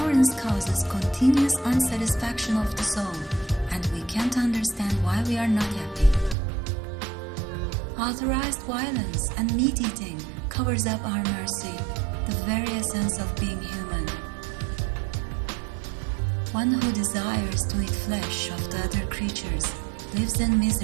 causes continuous unsatisfaction of the soul, and we can't understand why we are not happy. Authorized violence and meat-eating covers up our mercy, the very essence of being human. One who desires to eat flesh of the other creatures lives in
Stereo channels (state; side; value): drops out; left; at 6.4 s